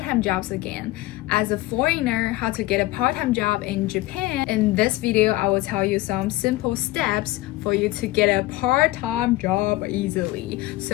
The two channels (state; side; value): quieter; right; 18.4 dB